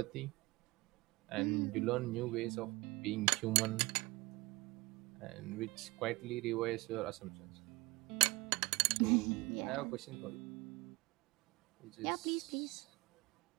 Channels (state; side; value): quieter; left; 22.8 dB